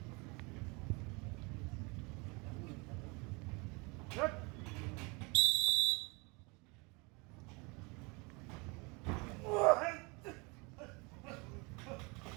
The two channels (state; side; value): quieter; left; 28.7 dB